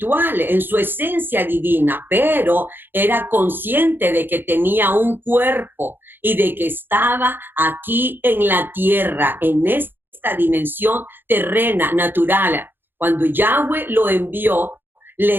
en su esencia divina, pero era consciente de que tenía un cuerpo y de que estaba aquí en la tierra, en esta dimensión terrena, natural. Cuando Yahweh lo envió,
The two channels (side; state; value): left; late; 0.098 ms